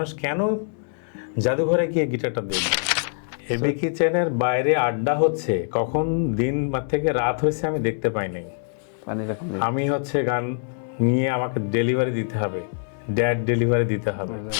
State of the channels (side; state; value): right; silent; digital silence